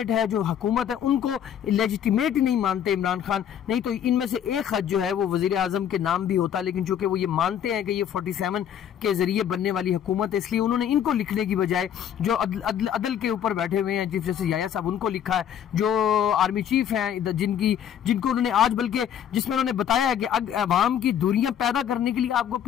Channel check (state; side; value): quieter; right; 9.4 dB